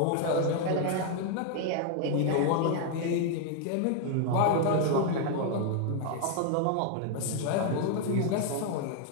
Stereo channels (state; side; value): different; both; correlation 0.00